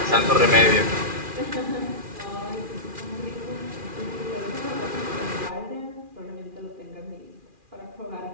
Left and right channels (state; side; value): late; left; 2.4 ms